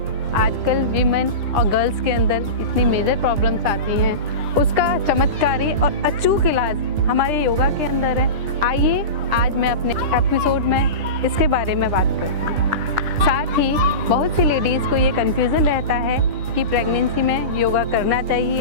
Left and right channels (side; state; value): left; late; 9.9 ms